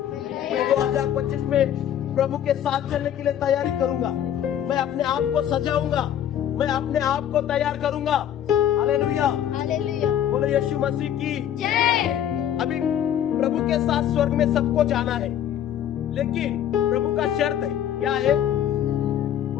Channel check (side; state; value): right; quieter; 10.4 dB